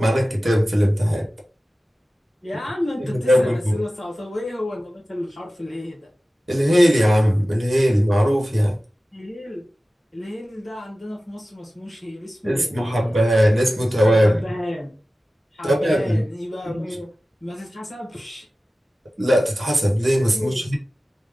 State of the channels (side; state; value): both; normal; correlation 0.96